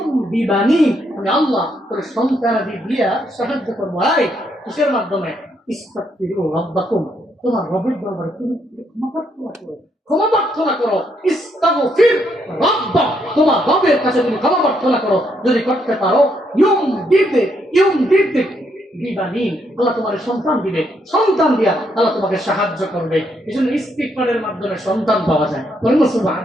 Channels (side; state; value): both; normal; correlation 0.75